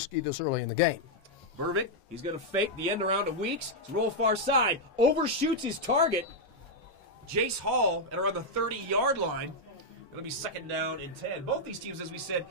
this early in the game. Burbick, he's going to fake the end around of Weeks. Roll far side, overshoots his target. Jace Hall at around the 30-yard line. It'll be second down and 10. Both these teams, as we said,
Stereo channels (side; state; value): both; normal; correlation -0.02